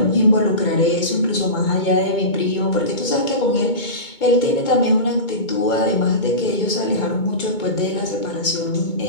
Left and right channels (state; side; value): late; right; 2.2 ms